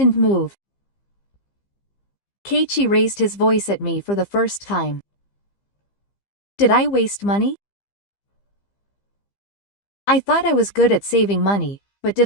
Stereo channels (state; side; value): late; right; 15 ms